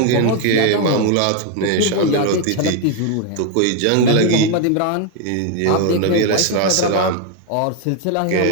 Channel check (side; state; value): both; different; correlation 0.01